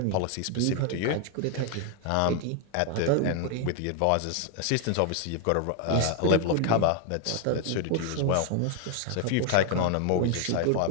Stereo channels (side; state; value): both; different; correlation 0.01